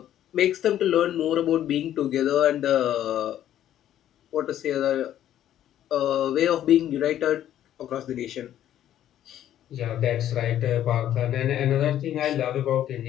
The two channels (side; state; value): right; quieter; 11.6 dB